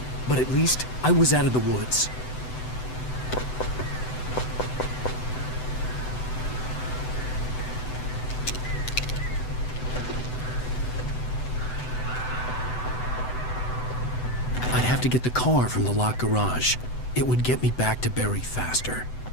but at least I was out of the woods. I'd have to get the car from the locked garage. It would get me back to Barry faster,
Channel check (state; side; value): late; right; 7.9 ms